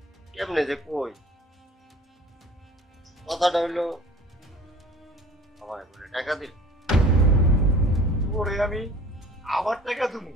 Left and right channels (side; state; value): both; normal; correlation 0.46